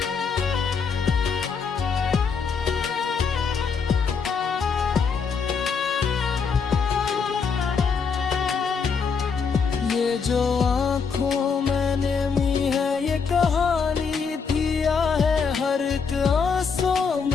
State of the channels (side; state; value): right; quieter; 5.7 dB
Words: ये जो आँखों में नमी है ये कहानी थी या है। हर एक आंसू